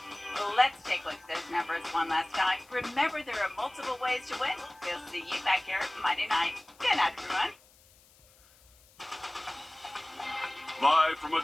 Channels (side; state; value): left; noise; hiss, 28 dB below the sound